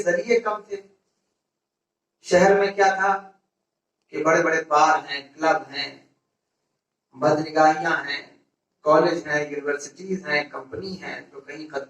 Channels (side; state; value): both; identical; correlation 1.00